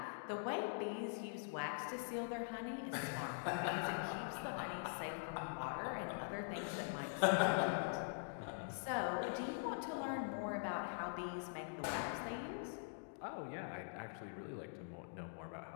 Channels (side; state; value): right; silent; digital silence